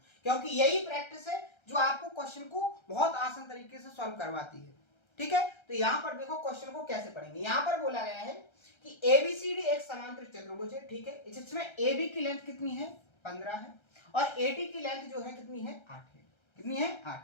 क्योंकि यही प्रैक्टिस है जो आपको क्वेश्चन को बहुत आसान तरीके से सॉल्व करवाती है। ठीक है, तो यहाँ पर देखो क्वेश्चन को कैसे पढ़ेंगे। यहाँ पर बोला गया है कि एबीसीडी एक समांतर चतुर्भुज है, ठीक है, जिसमें एबी की लेंथ कितनी है 15 है और एडी की लेंथ जो है कितनी है 8 है, कितनी है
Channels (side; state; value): right; late; 1.3 ms